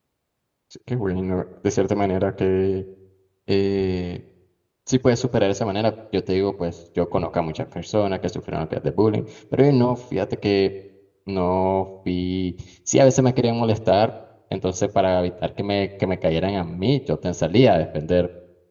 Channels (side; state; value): both; identical; correlation 1.00